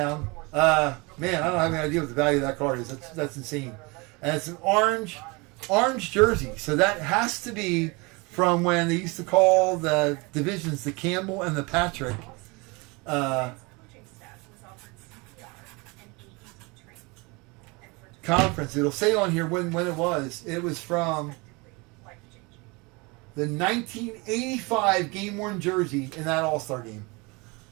Man, I don't have any idea what the value of that card is. That's insane. And it's an orange jersey. So that has to be from when they used to call the divisions the Campbell and the Patrick. Coaching staff was offered CPR and AED training. And for Conference. It'll say on here when it was. It was from life-changing. the 1985 game-worn jersey in that All-Star game.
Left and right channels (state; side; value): quieter; left; 27.1 dB